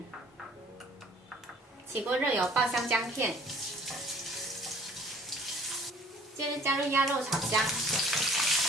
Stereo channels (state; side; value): normal; both; correlation 0.53